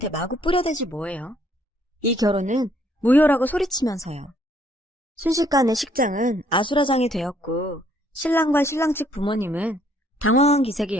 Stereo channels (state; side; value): normal; both; correlation 0.65